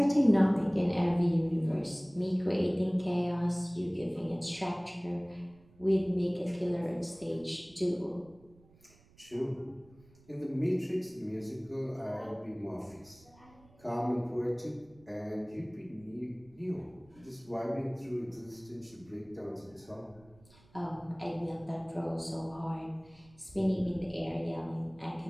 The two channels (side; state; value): right; noise; rumble, 27 dB below the sound